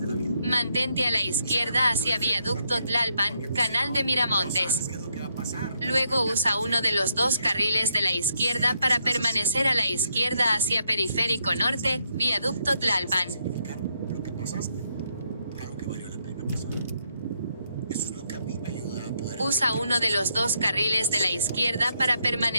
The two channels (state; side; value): inverted; both; correlation -0.77